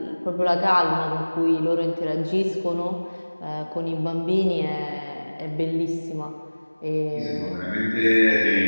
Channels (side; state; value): both; inverted; correlation -1.00